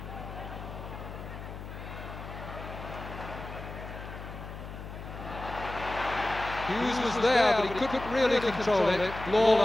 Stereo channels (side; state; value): left; noise; hum, 10 dB below the sound